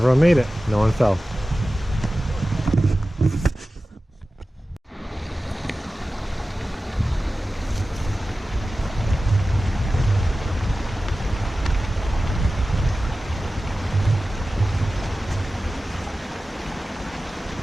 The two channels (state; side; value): normal; both; correlation 0.95